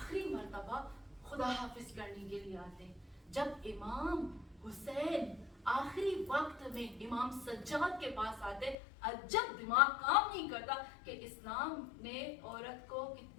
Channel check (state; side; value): drops out; right; at 8.8 s